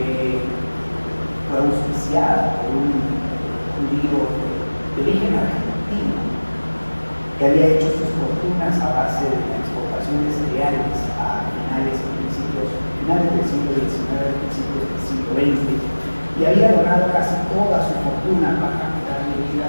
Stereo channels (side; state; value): both; inverted; correlation -1.00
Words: fue auspiciada por un judío de origen argentino que había hecho sus fortunas a base de la exportación de cereales a finales del siglo XIX, principios del siglo XX, y había donado casi toda su fortuna para darle